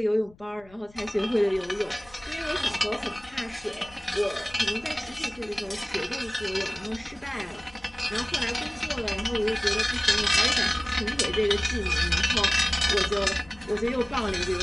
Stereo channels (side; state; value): left; noise; rumble, 26 dB below the sound